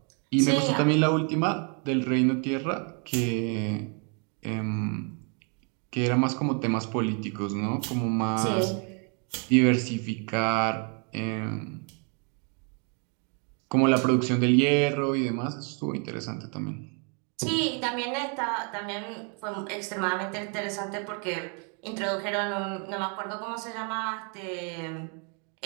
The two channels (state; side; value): quieter; left; 37.5 dB